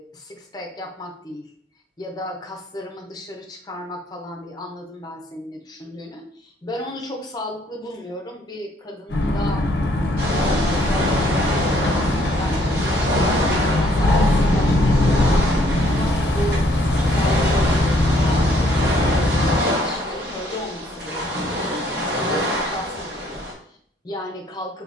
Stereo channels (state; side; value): normal; both; correlation 0.65